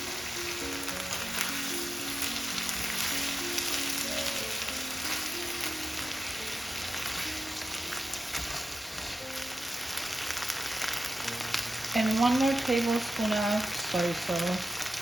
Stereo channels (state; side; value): normal; both; correlation 0.92